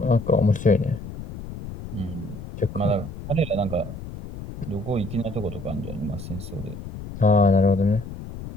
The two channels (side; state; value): left; noise; rumble, 11 dB below the sound